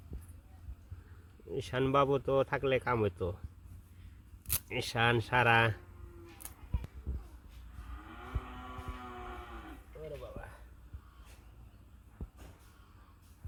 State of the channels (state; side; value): identical; both; correlation 1.00